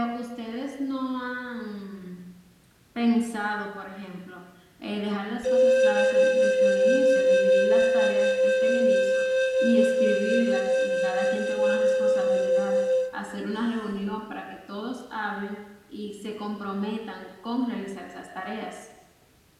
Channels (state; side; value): identical; both; correlation 1.00